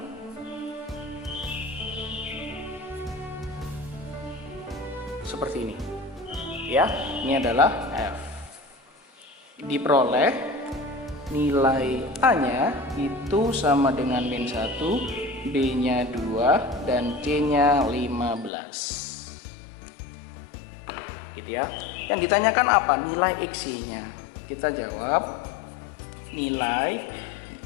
seperti ini ya. Ini adalah F. Diperoleh nilai A-nya itu sama dengan min 1, B-nya 2 dan C-nya 15. Gitu ya. Yang ditanyakan apa? Nilai X-nya. Kita jawab nilai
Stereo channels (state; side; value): drops out; right; at 18.5 s